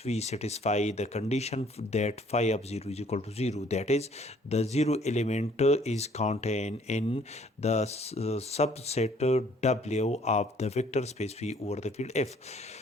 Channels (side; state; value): both; normal; correlation 0.59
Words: satisfy the condition that phi of 0 is equal to 0. That is, the zero element is contained in the subset W of the vector space V over the field F.